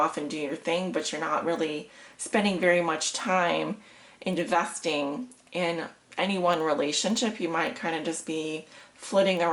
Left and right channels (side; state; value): both; identical; correlation 1.00